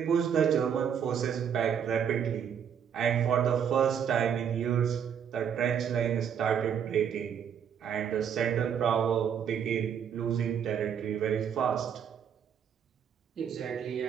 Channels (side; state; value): left; quieter; 8.1 dB